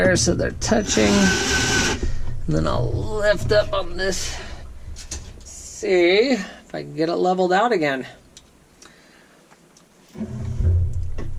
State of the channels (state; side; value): identical; both; correlation 1.00